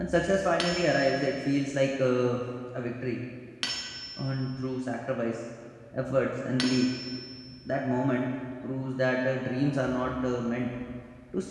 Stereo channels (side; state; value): both; identical; correlation 1.00